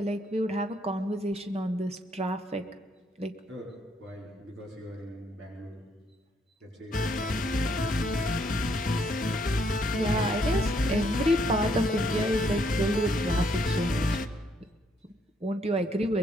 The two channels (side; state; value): both; normal; correlation 0.71